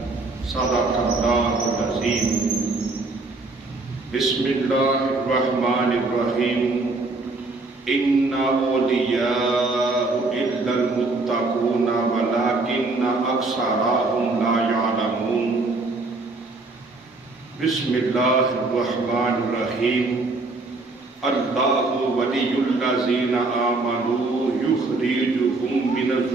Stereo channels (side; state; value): left; quieter; 3.4 dB